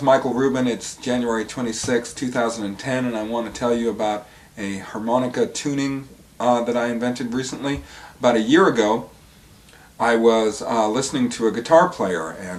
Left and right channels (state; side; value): identical; both; correlation 1.00